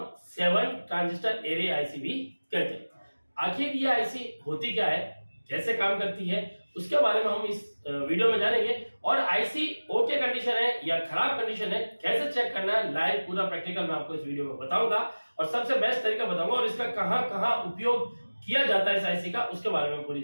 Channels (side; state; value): both; inverted; correlation -1.00